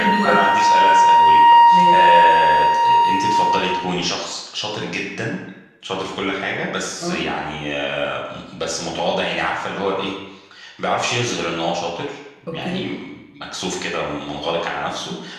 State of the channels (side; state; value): both; identical; correlation 1.00